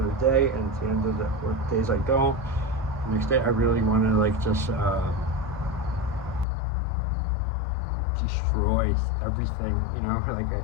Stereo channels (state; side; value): drops out; right; at 6.5 s